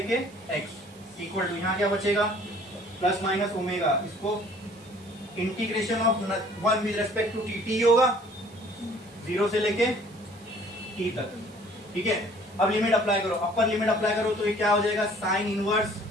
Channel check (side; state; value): right; noise; hiss, 25 dB below the sound